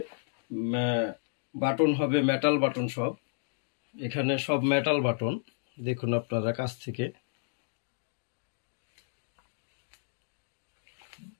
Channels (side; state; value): right; silent; digital silence